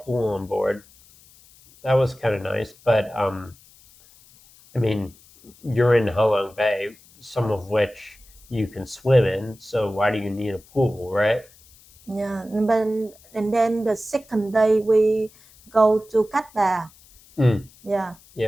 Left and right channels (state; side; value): noise; left; hiss, 26 dB below the sound